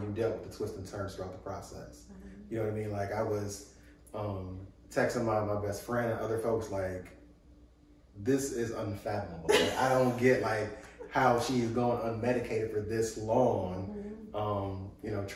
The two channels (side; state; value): both; identical; correlation 1.00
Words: dealt with the twists and turns throughout the process. Mm-hmm. You know what I mean? Like, I was texting my best friend and other folks like, this is unfathomable. Like, I don't get like how she's going unmedicated for this long. Mm-hmm. You know,